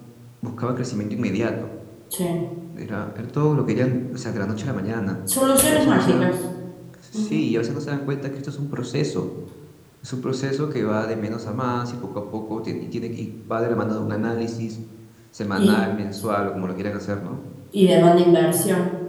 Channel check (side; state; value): both; identical; correlation 1.00